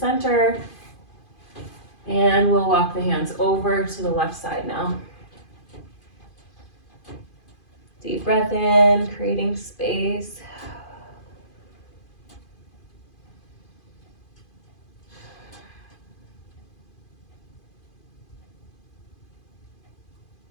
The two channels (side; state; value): right; late; 2.5 ms